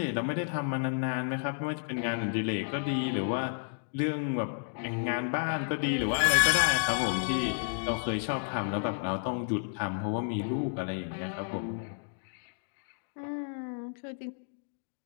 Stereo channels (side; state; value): right; silent; digital silence